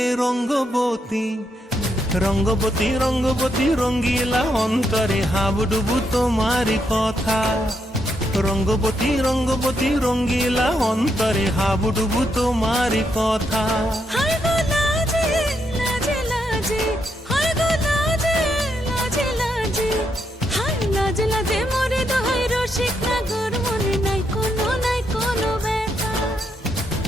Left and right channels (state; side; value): normal; both; correlation 0.79